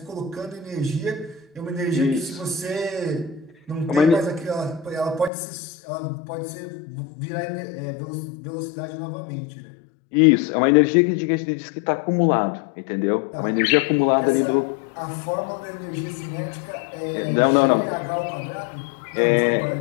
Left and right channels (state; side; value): drops out; right; at 5.3 s